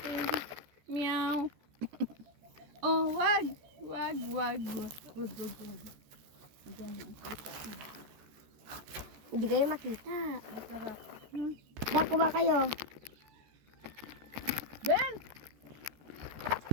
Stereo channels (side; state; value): left; late; 13 ms